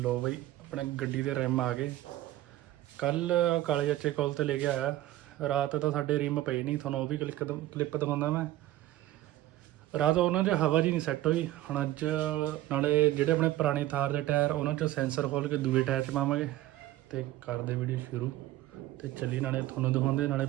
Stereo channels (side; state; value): left; quieter; 15.4 dB